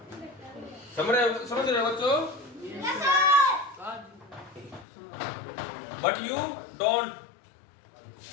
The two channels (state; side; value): drops out; right; at 4.9 s